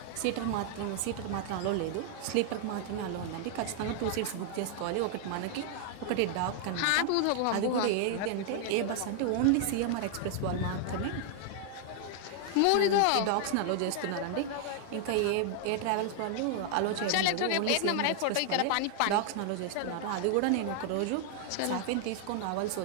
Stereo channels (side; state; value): both; different; correlation 0.00